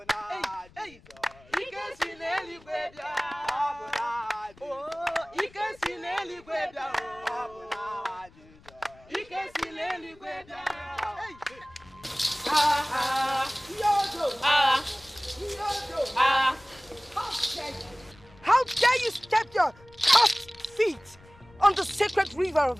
How dare you step your cursed feet on the sacred river of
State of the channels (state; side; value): noise; left; rumble, 25 dB below the sound